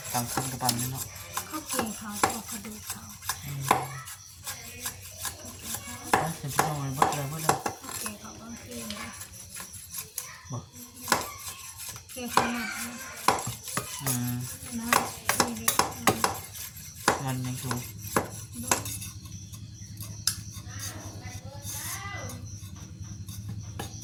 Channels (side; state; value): both; identical; correlation 1.00